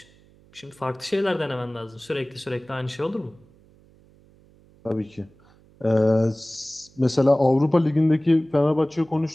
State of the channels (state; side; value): noise; right; hum, 29 dB below the sound